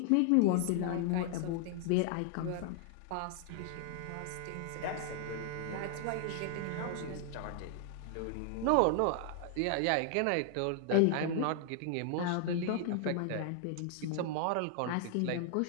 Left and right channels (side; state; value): both; different; correlation 0.00